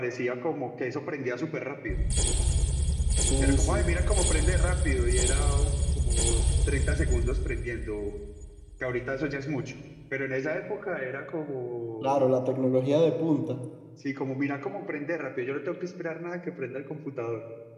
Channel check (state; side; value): identical; both; correlation 1.00